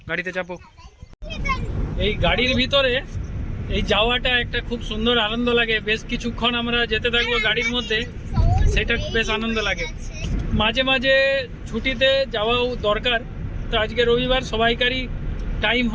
গাড়িতে চাপো। এই গাড়ির ভিতরে এই যাওয়াটা একটা খুব সুন্দর আনন্দ লাগে। বেশ কিছুক্ষণ আমরা যেতে থাকবো গাড়ির মধ্যে, সেটা বেশ আনন্দ লাগে। মাঝে মাঝে ছুটিতে যাওয়াও দরকার। তো আজকে রবিবার, সবাইকারই টাইম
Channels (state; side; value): identical; both; correlation 1.00